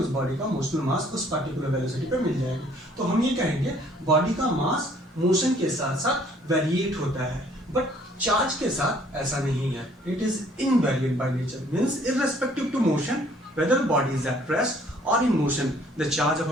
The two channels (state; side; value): normal; both; correlation 0.60